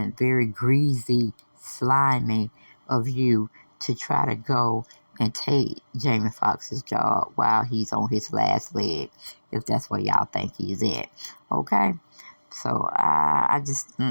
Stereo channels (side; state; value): both; inverted; correlation -1.00